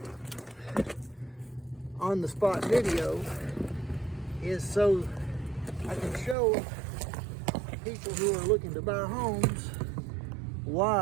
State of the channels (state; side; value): drops out; left; at 6.4 s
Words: on-the-spot video is so I can show people who are looking to buy homes